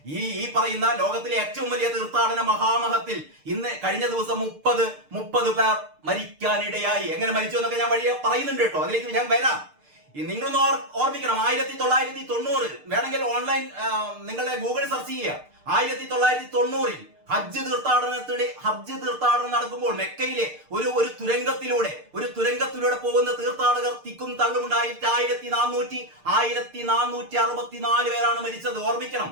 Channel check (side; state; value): left; late; 6.6 ms